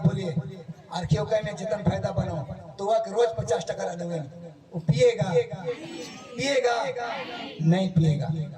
आर्थियों में जितना फायदा बनाओ, तो वह रोज 50 टका दूंगे, वो पिएगा नहीं पिएगा।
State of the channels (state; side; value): identical; both; correlation 1.00